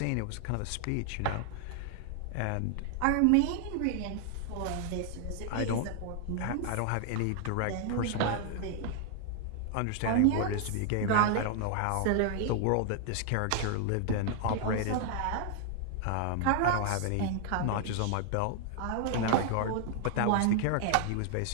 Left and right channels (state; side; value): different; both; correlation 0.00